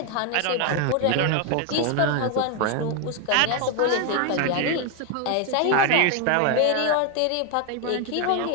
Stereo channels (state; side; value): different; both; correlation 0.01